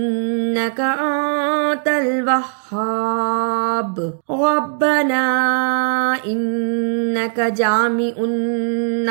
انت الوہاب. ربنا انک جامع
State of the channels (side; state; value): left; silent; 63 dB below the other